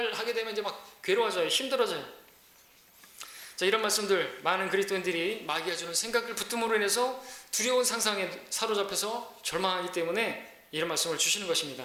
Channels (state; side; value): identical; both; correlation 1.00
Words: 하게 되면 이제 막 괴로워져요. 힘들어져요. 자, 이런 말씀들, 많은 그리스도인들이 마귀가 주는 생각을 붙듦으로 인해서 두려운 상상에 사로잡혀서 절망하기 때문에 이런 말씀을 주시는